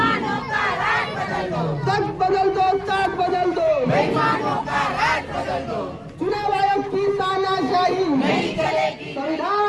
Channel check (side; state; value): both; identical; correlation 1.00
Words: का राज बदल दो, तक बदल दो, ताक बदल दो, बेईमानों का राज बदल दो। चुनाव आयोग की तानाशाही नहीं चलेगी।